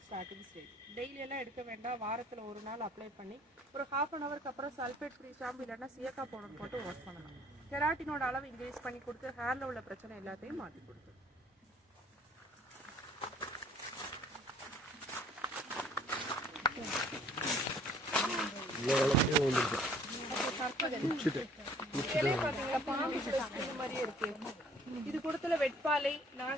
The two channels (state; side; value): normal; both; correlation 0.56